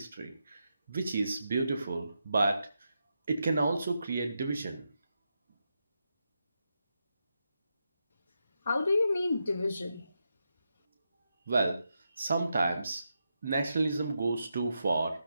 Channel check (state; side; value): inverted; both; correlation -0.86